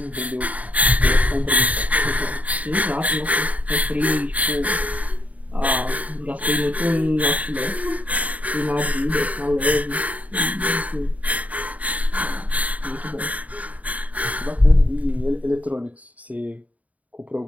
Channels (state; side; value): late; left; 0.071 ms